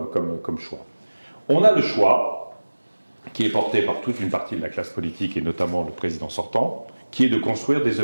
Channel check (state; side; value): inverted; both; correlation -1.00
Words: choix? On a le choix, qui est porté par toute une partie de la classe politique, et notamment le président sortant, qui est de construire des